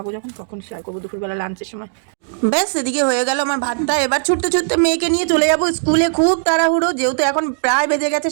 যখন তখন শেয়ার করবো দুপুরবেলা লাঞ্চের সময়। ব্যাস এদিকে হয়ে গেল আমার ভাতটা। এবার ছুটতে ছুটতে মেয়েকে নিয়ে চলে যাবো স্কুলে। খুব তাড়াহুড়ো, যেহেতু এখন প্রায় বেজে গেছে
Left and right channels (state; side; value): silent; left; digital silence